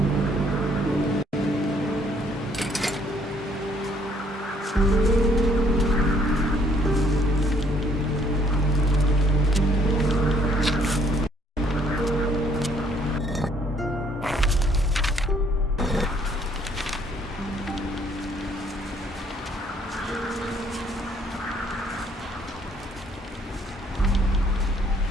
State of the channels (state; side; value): normal; both; correlation 0.64